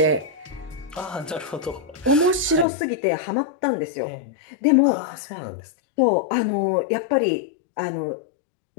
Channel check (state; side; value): drops out; right; at 2.7 s